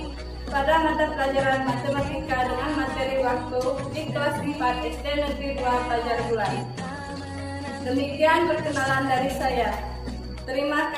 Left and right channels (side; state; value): both; identical; correlation 1.00